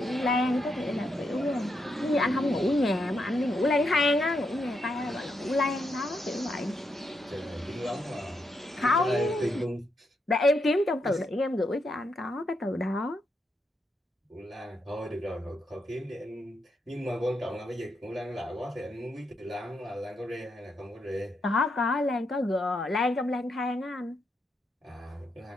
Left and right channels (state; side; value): normal; both; correlation 0.81